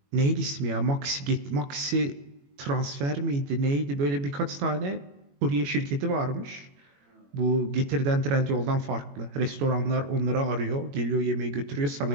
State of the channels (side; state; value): left; late; 21 ms